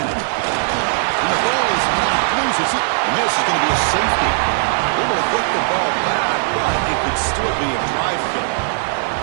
And the ball is not loose. And this is going to be a safety. Able to get the ball back, but it could still be a drive killer.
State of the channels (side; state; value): left; silent; digital silence